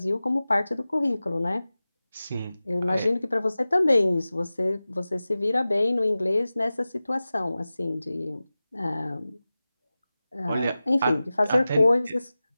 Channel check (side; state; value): both; inverted; correlation -0.96